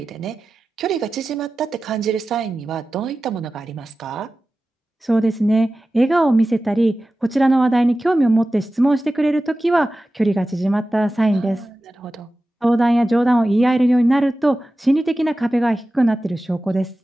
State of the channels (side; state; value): both; normal; correlation 0.95